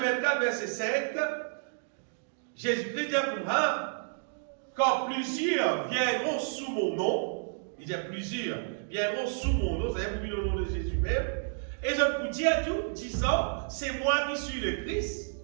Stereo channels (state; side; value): silent; left; digital silence